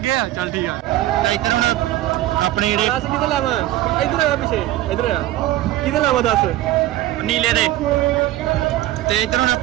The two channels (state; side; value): quieter; left; 15.1 dB